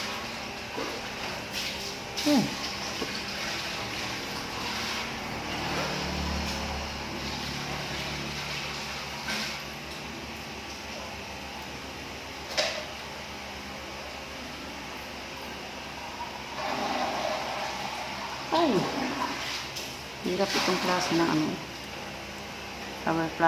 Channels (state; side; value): identical; both; correlation 1.00